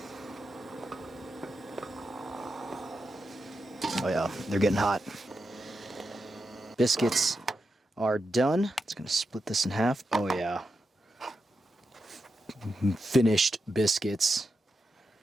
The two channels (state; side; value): normal; both; correlation 0.87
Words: Oh yeah, they're getting hot. Biscuits are done. It's gonna split this in half. Oh yeah. Finished biscuits.